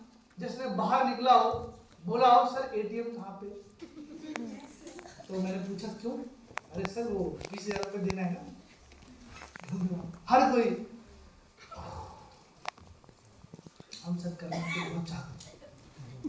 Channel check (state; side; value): identical; both; correlation 1.00